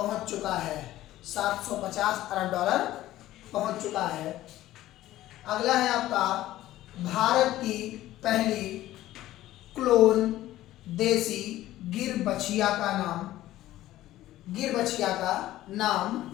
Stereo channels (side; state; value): right; quieter; 14.8 dB